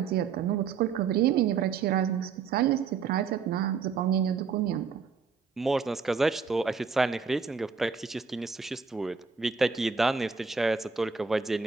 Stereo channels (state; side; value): quieter; left; 5.7 dB